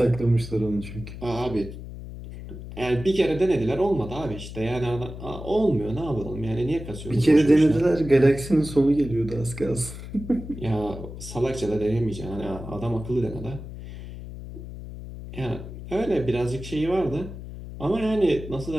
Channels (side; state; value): left; noise; hum, 11 dB below the sound